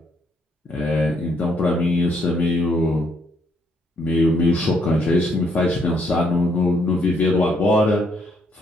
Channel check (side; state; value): both; normal; correlation 0.71